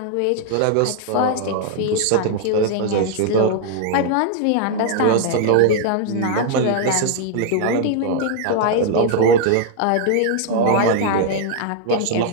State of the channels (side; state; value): both; different; correlation 0.00